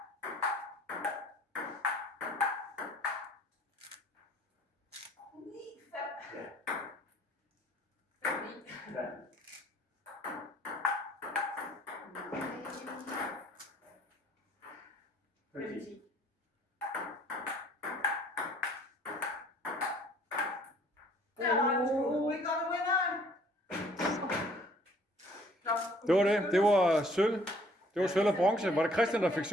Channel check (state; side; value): normal; both; correlation 0.58